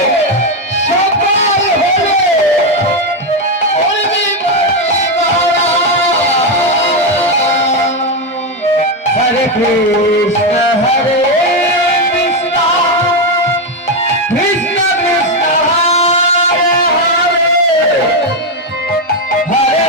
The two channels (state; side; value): normal; both; correlation 0.07